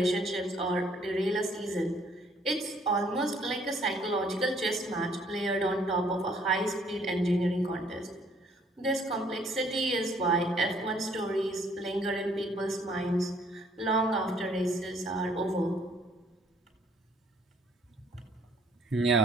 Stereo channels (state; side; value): normal; both; correlation 0.63